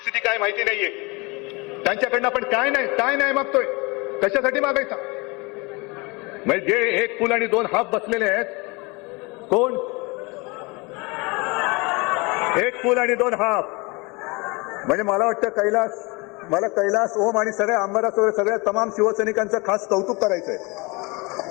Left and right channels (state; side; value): quieter; right; 26.9 dB